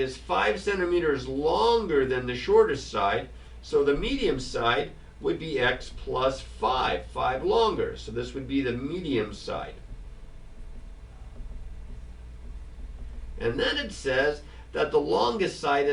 is 5 centimeters longer than the shortest side. So the medium side would be x plus 5 longer. So this would be the medium side. And then it says that the longest side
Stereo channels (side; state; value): both; identical; correlation 1.00